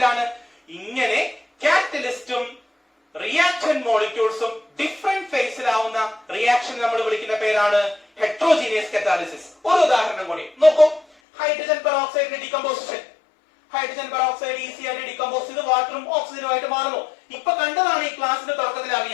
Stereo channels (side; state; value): right; drops out; at 11.1 s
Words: ഇങ്ങനെ കാറ്റലിസ്റ്റും റിയാക്ടന്റ് മോളിക്യൂൾസും ഡിഫറെന്റ് ഫേസിലാവുന്ന റിയാക്ഷൻ നമ്മൾ വിളിക്കുന്ന പേരാണ് ഹെറ്ററോജീനിയസ് കറ്റാലിസിസ്. ഒരു ഉദാഹരണം കൂടി നോക്കൂ. ഹൈഡ്രജൻ പെറോക്സൈഡിന്റെ ഡീകമ്പോസിഷൻ. ഹൈഡ്രജൻ പെറോക്സൈഡ് ഈസി ആയിട്ട് ഡീകമ്പോസ് ചെയ്ത് വാട്ടറും ഓക്സിജനും ആയിട്ട് മാറുന്നു. ഇപ്പൊ കണ്ടതാണ് ഈ ക്ലാസിന്റെ തുടക്കത്തിൽ ആ